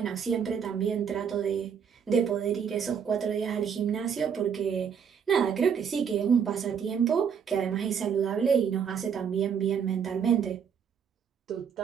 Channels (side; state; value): left; quieter; 7.2 dB